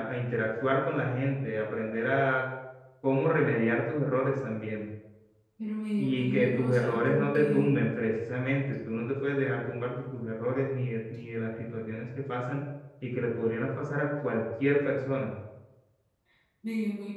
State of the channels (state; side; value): identical; both; correlation 1.00